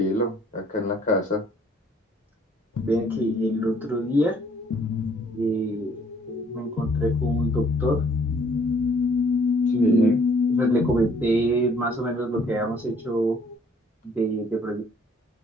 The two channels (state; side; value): normal; both; correlation 0.61